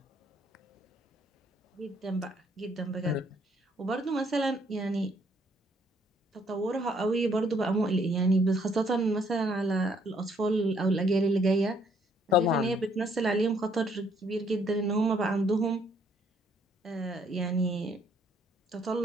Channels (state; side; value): normal; both; correlation 0.67